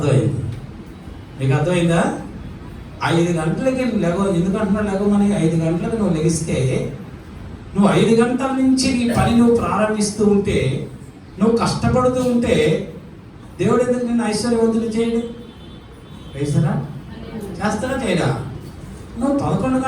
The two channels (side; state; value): both; identical; correlation 1.00